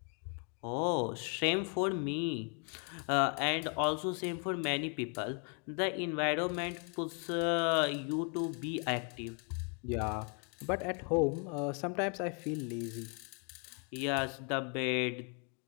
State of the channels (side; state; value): right; quieter; 39.3 dB